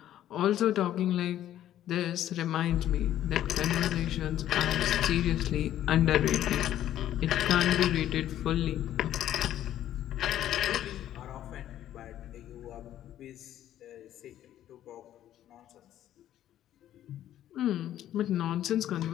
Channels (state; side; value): quieter; right; 12.0 dB